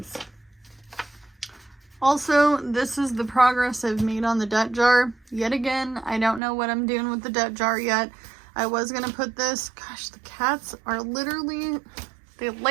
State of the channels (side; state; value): left; drops out; at 6.4 s